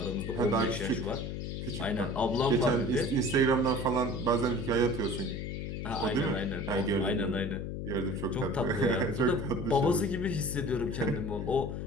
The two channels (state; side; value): noise; left; hum, 5 dB below the sound